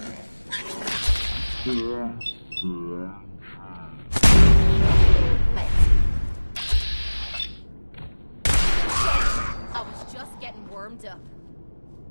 I was just getting warmed up.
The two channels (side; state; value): both; inverted; correlation -1.00